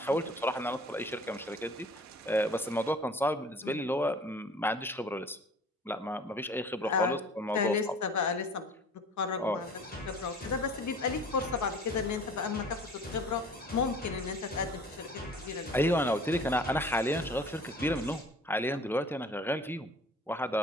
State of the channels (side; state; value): both; normal; correlation 0.47